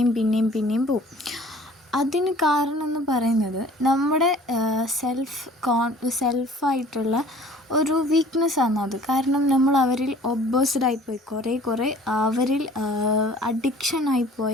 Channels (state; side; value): normal; both; correlation 0.50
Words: പോകും. അതിന് കാരണം എന്ന് പറയുന്നത് നമ്മുടെ സെൽഫായിട്ടുള്ള ഒരു വീക്ക്നെസ്സാണ് അത്. കാരണം നമ്മൾ അവരിൽ ഒബ്സസ്ഡായിപ്പോയി, കുറേ അവരിൽ